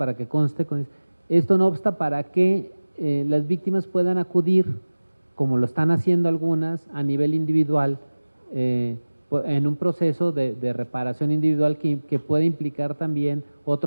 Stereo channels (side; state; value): both; inverted; correlation -1.00